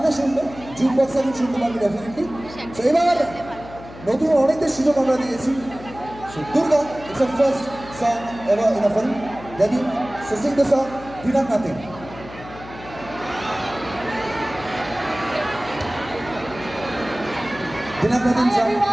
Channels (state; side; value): noise; left; hum, 16 dB below the sound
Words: শুনবে, জুম বক্সে শুনতে পারবে ডেফিনেটলি। তো এবার নতুন অনেকদের সুযোগ আমরা দিয়েছি। Durga, it's a first song ever in a film, ready? So Singh the song Veena nothing. Veena nothing song.